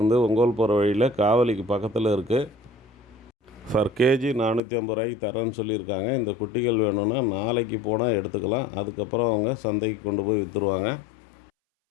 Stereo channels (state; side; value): drops out; right; at 4.6 s